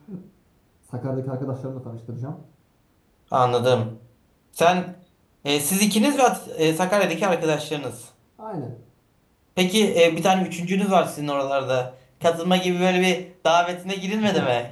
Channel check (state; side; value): identical; both; correlation 1.00